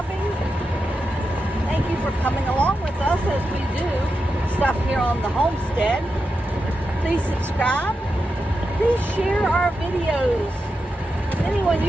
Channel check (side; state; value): both; normal; correlation 0.88